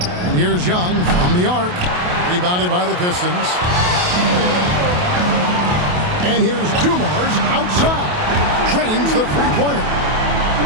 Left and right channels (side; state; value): left; late; 28 ms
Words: And here's Young from the arc. Rebounded by the Pistons. And here's Dumars outside. Trains the three-pointer.